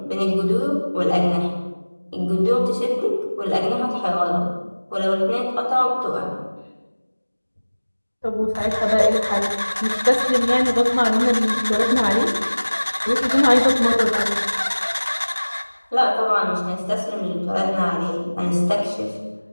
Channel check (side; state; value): both; inverted; correlation -1.00